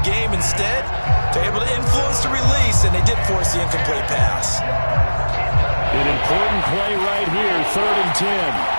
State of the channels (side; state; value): both; inverted; correlation -1.00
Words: Instead, they're able to influence the release, and they did force the incomplete pass. An important play right here, 3rd and 10.